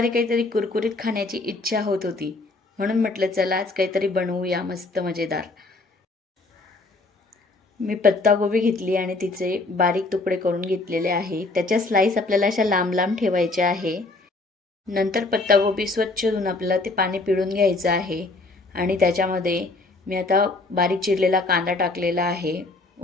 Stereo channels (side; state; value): right; quieter; 3.3 dB